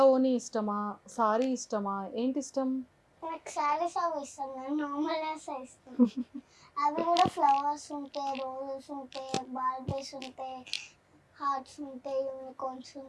ఓని ఇష్టమా, సారీ ఇష్టమా, ఏంటి ఇష్టం? నాకు సారీస్ అవి ఇష్టం, నేను నార్మల్ ఇష్టం. అవి కూడా ఫ్లవర్స్ ఉంటాయి, రోజెస్ ఉంటాయి, బార్బీస్ ఉంటాయి, హార్ట్స్ ఉంటాయి, యూనికార్న్స్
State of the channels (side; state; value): both; identical; correlation 1.00